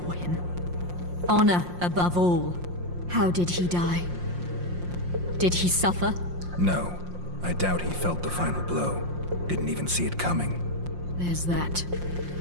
him. Honor above all. How did he die? Did he suffer? No. I doubt he felt the final blow. Didn't even see it coming. There's that,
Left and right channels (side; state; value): left; late; 5.6 ms